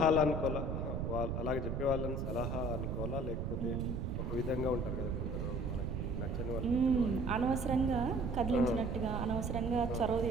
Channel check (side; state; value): right; noise; rumble, 2 dB below the sound